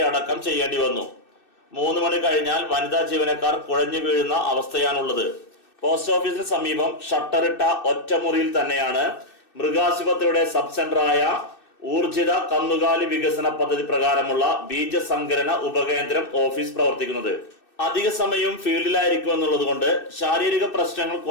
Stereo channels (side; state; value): right; late; 2.6 ms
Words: അടക്കം ചെയ്യേണ്ടി വന്നു. 3 മണി കഴിഞ്ഞാൽ വനിതാ ജീവനക്കാർ കുഴഞ്ഞു വീഴുന്ന അവസ്ഥയാണുള്ളത്. പോസ്റ്റ് ഓഫീസിന് സമീപം ഷട്ടറിട്ട ഒറ്റമുറിയിൽ തന്നെയാണ് മൃഗാശുപത്രിയുടെ സബ് സെന്ററായ ഊർജിത കന്നുകാലി വികസന പദ്ധതി പ്രകാരമുള്ള ബീജസങ്കലന ഉപകേന്ദ്രം ഓഫീസ് പ്രവർത്തിക്കുന്നത്. അധിക സമയവും ഫീൽഡിലായിരിക്കുമെന്നുള്ളത് കൊണ്ട് ശാരീരിക പ്രശ്നങ്ങൾ